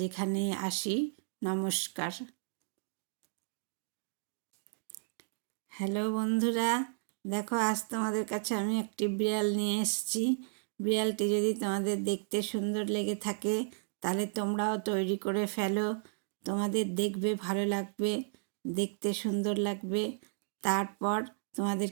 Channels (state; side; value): silent; left; digital silence